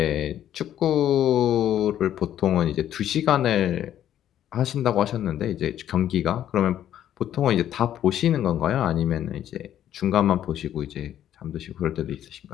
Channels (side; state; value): right; quieter; 11.2 dB